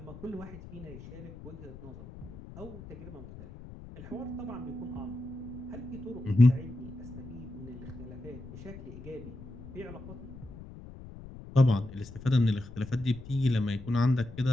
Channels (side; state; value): left; noise; rumble, 14 dB below the sound